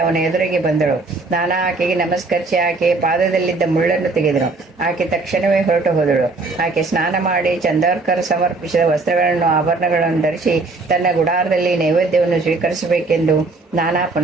ಅವನ ಎದುರಿಗೆ ಬಂದಳು. ನಾನಾ ಆಕೆಗೆ ನಮಸ್ಕರಿಸಿ ಆಕೆಯ ಪಾದದಲ್ಲಿದ್ದ ಮುಳ್ಳನ್ನು ತೆಗೆದನು. ಆಕೆ ತಕ್ಷಣವೇ ಹೊರಟು ಹೋದಳು. ಆಕೆ ಸ್ನಾನ ಮಾಡಿ ಚಂದೋರ್ಕರ್ ಸಮರ್ಪಿಸಿದ ವಸ್ತ್ರಗಳನ್ನು ಆಭರಣಗಳನ್ನು ಧರಿಸಿ ತನ್ನ ಗುಡಾರದಲ್ಲಿ ನೈವೇದ್ಯವನ್ನು ಸ್ವೀಕರಿಸಬೇಕೆಂದು ನಾನಾ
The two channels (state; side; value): quieter; left; 3.6 dB